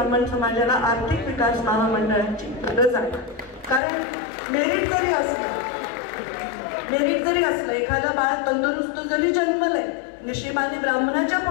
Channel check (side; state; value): right; drops out; at 3.8 s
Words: समाजाला आर्थिक विकास महामंडळाची गरज आहे. कारण मेरिट जरी असलं एखादं बाळ तंदुरुस्त जरी जन्मलंय, नशिबाने ब्राह्मणाच्या